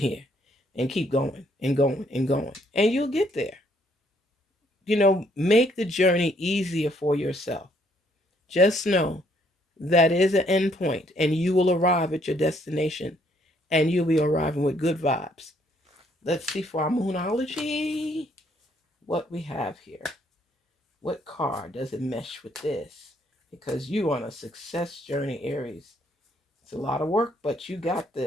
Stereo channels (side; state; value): both; normal; correlation 0.68